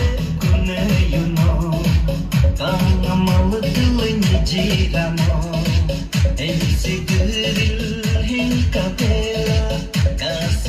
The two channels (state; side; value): identical; both; correlation 1.00